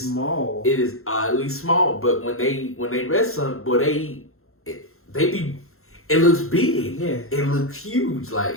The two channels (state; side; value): late; right; 0.62 ms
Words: small. It is oddly small. But when they wrestle, boy, it looks big. Yeah. It looks huge. Like,